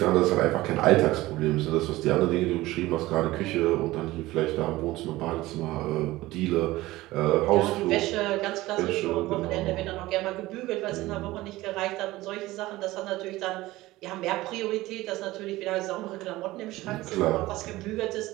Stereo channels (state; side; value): quieter; left; 18.1 dB